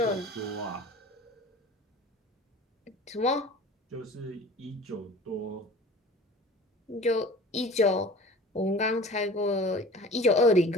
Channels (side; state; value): both; normal; correlation 0.42